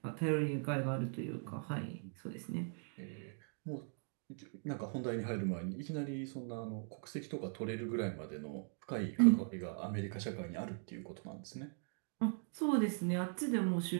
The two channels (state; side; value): silent; left; 51 dB below the other